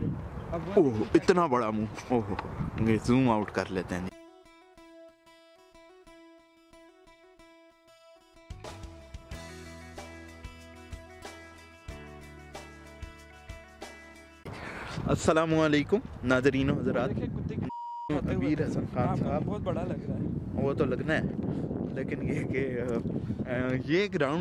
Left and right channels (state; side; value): identical; both; correlation 1.00